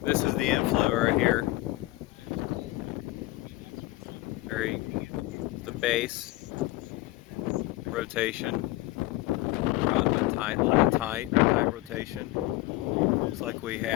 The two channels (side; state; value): right; quieter; 18.6 dB